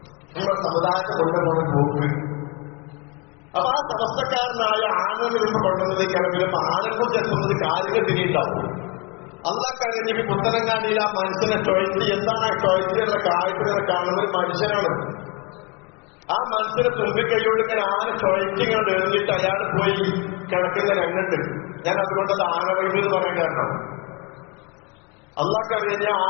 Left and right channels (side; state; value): right; quieter; 28.7 dB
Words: നമ്മുടെ സമുദായത്തെ കൊണ്ടുപോകുന്ന പോക്ക്. അപ്പൊ ആ സമസ്തക്കാരനായ ആനന്ദ നിന്ന് കൊണ്ടുവന്നതിലേക്കാണെങ്കിലും ആനന്ദം ചെലുത്തുന്നത് കാര്യങ്ങൾ തിരിയുണ്ടാവും. അള്ളാഹ്ക്കറിഞ്ഞ പുത്തനങ്ങാടിയിൽ ആ മനുഷ്യനെ ടോയ്ലറ്റ് എന്താണ് ആ ടോയ്ലറ്റിലുള്ള കാഴ്ചകളെ കാണുന്ന ഒരു മനുഷ്യനാണ്. ആ മനുഷ്യനെ തുമ്പിക്കൈയോട് ഇങ്ങനെ ആന ടോയ്ലറ്റിങ്ങനെ എറിഞ്ഞിട്ട് അയാൾ പോയി കിടക്കുന്ന രംഗുണ്ട്. ഞാൻ അതുകൊണ്ടത് ആനവൈബ് എന്ന് പറയാൻ കാരണം അള്ളാഹ്ക്കറിയാം